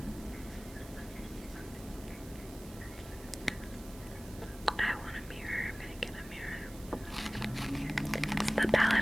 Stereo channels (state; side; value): noise; right; hiss, 18 dB below the sound